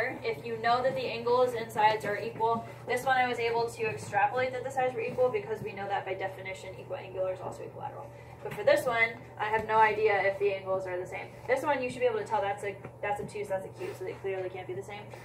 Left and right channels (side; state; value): both; identical; correlation 1.00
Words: if you know that the angles and sides are equal. This one I was able to extrapolate that the sides were equal because we know that by definition equiangular is also equilateral. But for this one, I have no idea if the angles are the same. This one you should be able to tell that's obtuse, that's acute, so they clearly can't be the same.